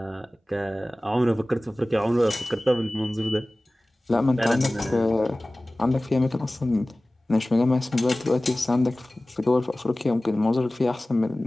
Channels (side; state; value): both; normal; correlation 0.98